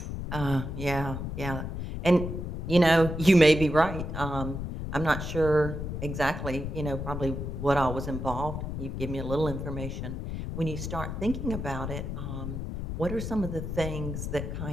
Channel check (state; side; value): noise; left; rumble, 5 dB below the sound